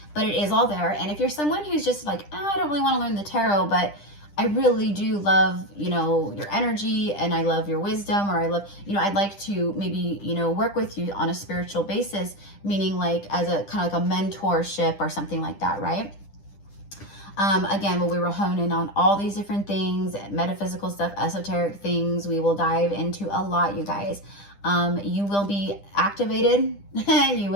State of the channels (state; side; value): late; right; 10 ms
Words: But it is all there. And if you're someone who's just like, oh, I don't really want to learn the tarot, but I really do love, you know, your energy, and I love your wisdom, or I love, you know, I'd like to maybe, you know, work with you on a spiritual basis, meaning like as a kind of like a mentorship or something like that, right? Again, we will hone in on all these different things, metaphysical stuff, esoteric things. We will dive into a lot, you guys. You will be activated. You